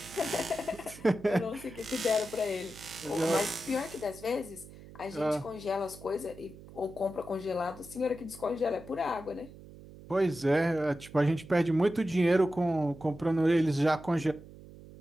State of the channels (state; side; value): noise; right; hum, 18 dB below the sound